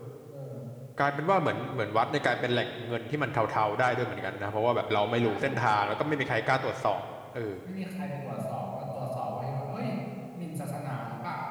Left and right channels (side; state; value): both; identical; correlation 1.00